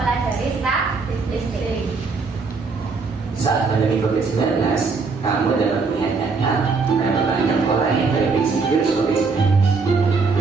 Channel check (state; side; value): quieter; left; 4.5 dB